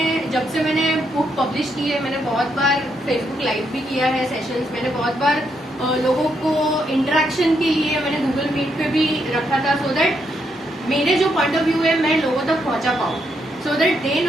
जब से मैंने बुक पब्लिश की है मैंने बहुत बार फेसबुक लाइव भी किया है सेशंस, मैंने बहुत बार लोगों को इंटरेक्शन के लिए मैंने गूगल मीट पे भी रखा था, सो दैट मेरे जो पॉइंट ऑफ व्यू है मैं लोगों तक पहुंचा पाऊँ, सो दैट दे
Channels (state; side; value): normal; both; correlation 0.78